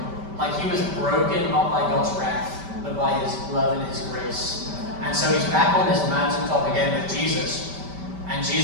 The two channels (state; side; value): late; left; 5.1 ms